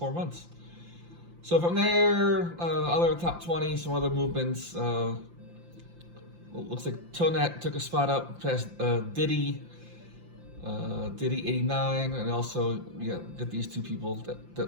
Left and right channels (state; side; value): late; left; 5.8 ms